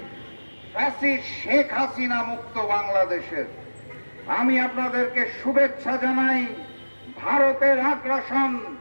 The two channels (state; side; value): inverted; both; correlation -1.00